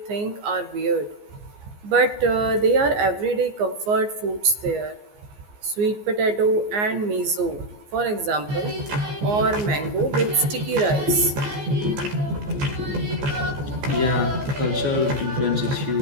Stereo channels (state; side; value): late; left; 14 ms